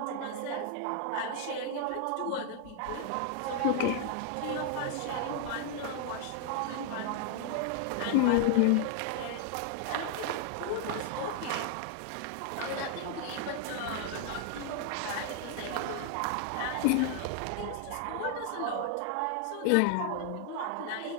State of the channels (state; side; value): different; both; correlation 0.00